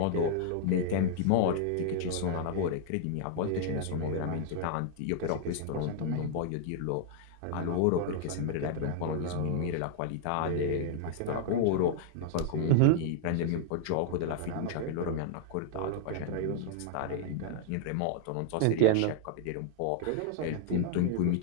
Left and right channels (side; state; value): both; different; correlation -0.01